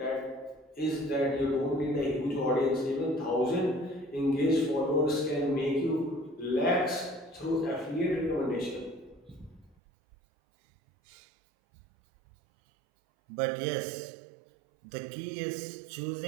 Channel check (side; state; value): left; drops out; at 9.8 s